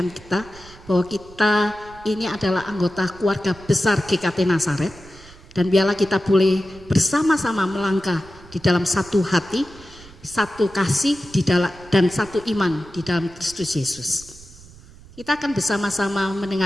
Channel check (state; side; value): noise; right; rumble, 21 dB below the sound